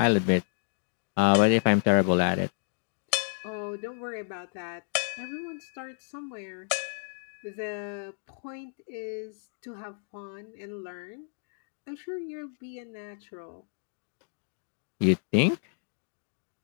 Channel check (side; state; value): right; silent; digital silence